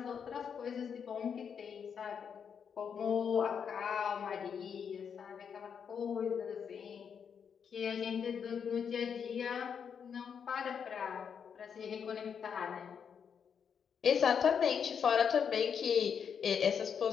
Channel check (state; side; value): quieter; right; 7.1 dB